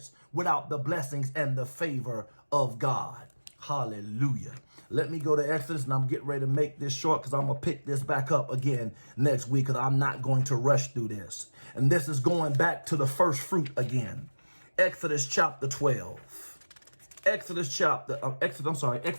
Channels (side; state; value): both; inverted; correlation -1.00